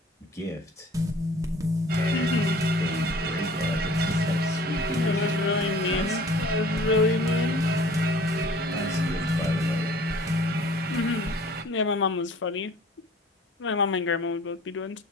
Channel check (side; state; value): both; normal; correlation 0.50